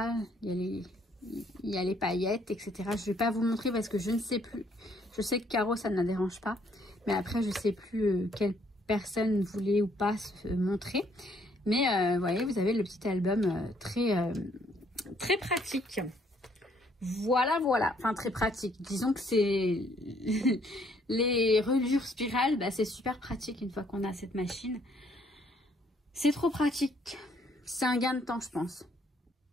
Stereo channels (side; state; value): both; normal; correlation 0.66